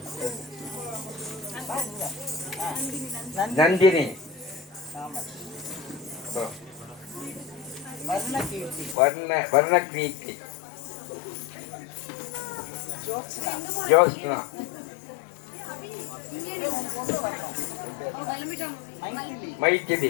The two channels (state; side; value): drops out; right; at 9.0 s